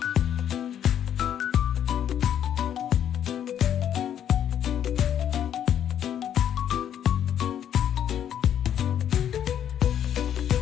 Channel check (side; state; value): right; quieter; 9.8 dB